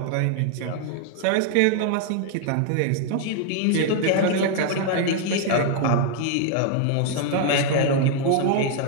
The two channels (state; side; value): different; both; correlation 0.00